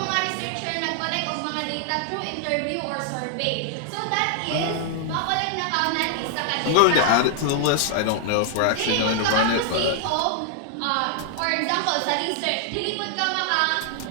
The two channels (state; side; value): different; both; correlation 0.00